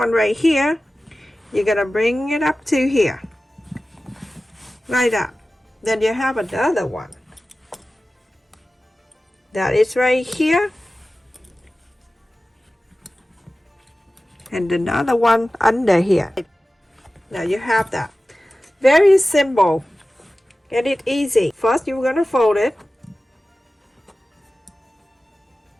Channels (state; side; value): normal; both; correlation 0.95